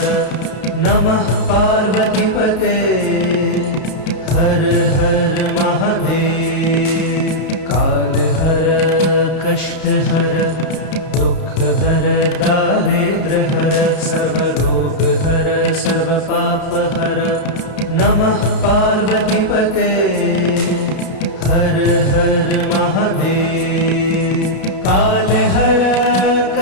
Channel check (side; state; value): right; late; 32 ms